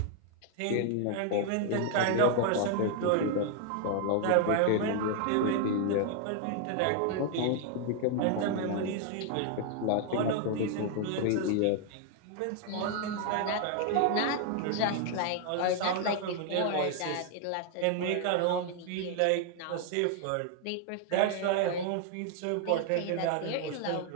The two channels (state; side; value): different; both; correlation 0.00